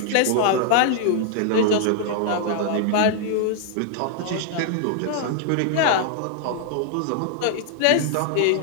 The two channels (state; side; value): different; both; correlation 0.00